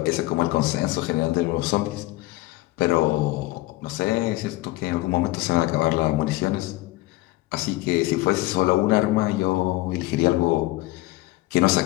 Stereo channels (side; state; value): right; quieter; 18.9 dB